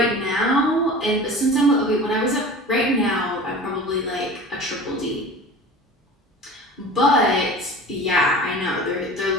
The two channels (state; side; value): normal; both; correlation 0.38